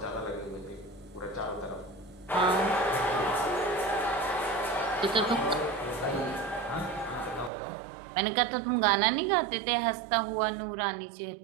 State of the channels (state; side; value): drops out; left; at 7.5 s